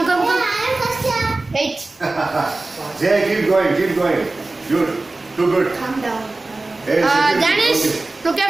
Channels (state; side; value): quieter; left; 3.2 dB